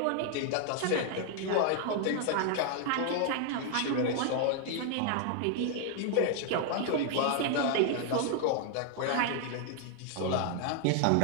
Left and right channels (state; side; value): different; both; correlation 0.00